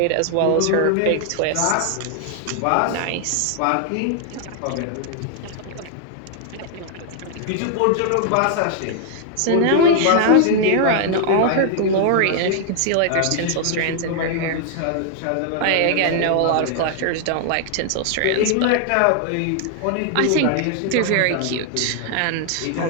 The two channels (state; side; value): different; both; correlation 0.00